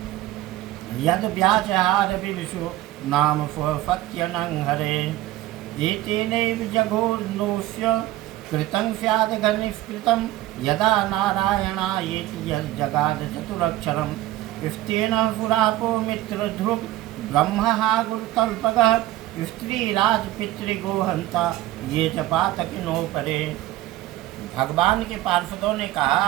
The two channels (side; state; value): left; quieter; 15.6 dB